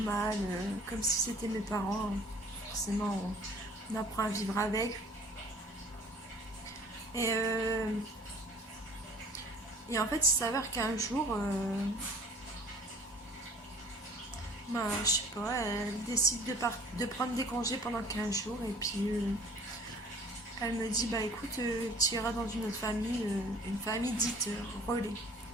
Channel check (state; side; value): normal; both; correlation 0.51